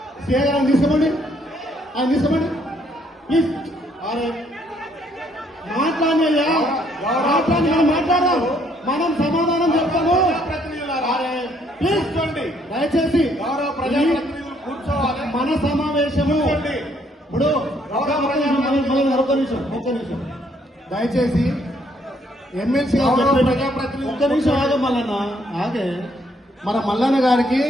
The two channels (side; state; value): both; normal; correlation 0.68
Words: సీఏ గారు తీసుకోండి, ఆయన తీసుకోండి ప్లీజ్. మాట్లాడినయ్యా, మాట్లాడి మనం మాట్లాడదాం, మనం సమాధానం చెప్తాము. ప్లీజ్ దయచేసి మన సమావేశము ఇప్పుడు ఒక్క నిమిషం దయచేసి ఎమ్మెల్సీ ఒక్క నిమిషం ఆగే మల్లన్న, ఆగే. మన మల్లన్న గారికి